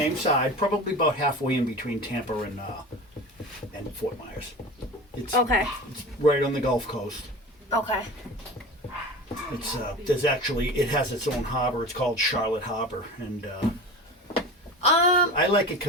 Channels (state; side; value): normal; both; correlation 0.33